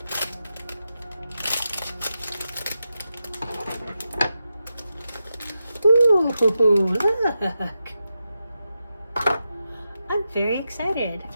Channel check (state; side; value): inverted; both; correlation -0.89